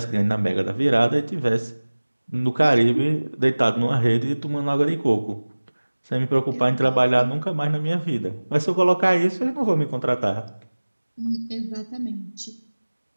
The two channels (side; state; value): both; inverted; correlation -1.00